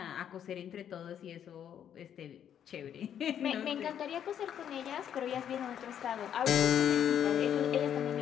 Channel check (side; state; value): right; quieter; 9.4 dB